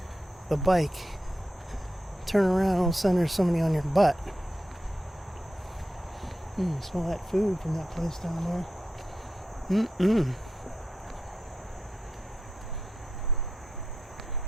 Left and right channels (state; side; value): normal; both; correlation 0.88